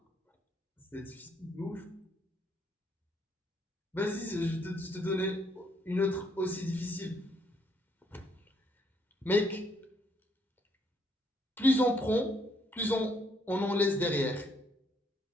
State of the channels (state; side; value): normal; both; correlation 0.70